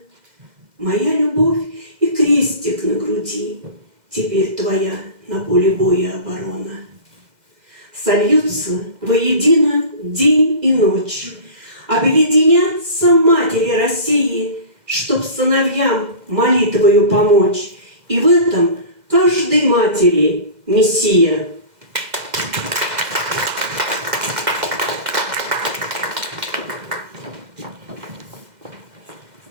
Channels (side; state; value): left; late; 2.1 ms